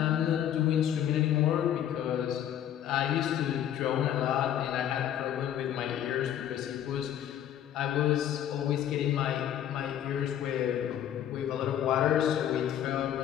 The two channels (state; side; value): quieter; right; 10.6 dB